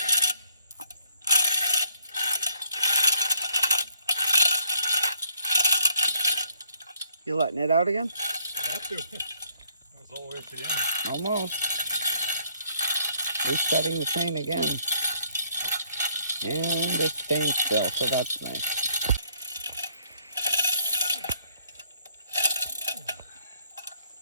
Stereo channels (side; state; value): both; inverted; correlation -0.67